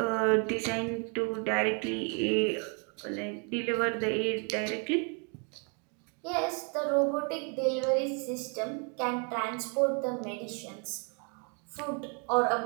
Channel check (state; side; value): quieter; left; 37.1 dB